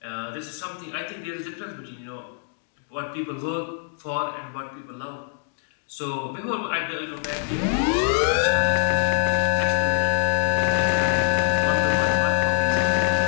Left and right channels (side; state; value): right; silent; 59 dB below the other